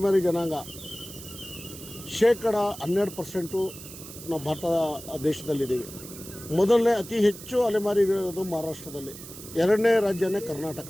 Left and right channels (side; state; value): right; noise; hiss, 14 dB below the sound